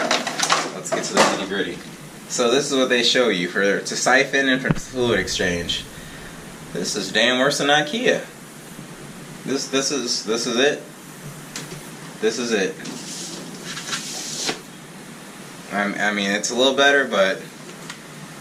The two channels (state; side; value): identical; both; correlation 1.00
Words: Let's get to the nitty-gritty. So this is what they show you to siphon and for fluid exchange. This is damn worse than IKEA. This is it. This is it. I mean, it's a little better, but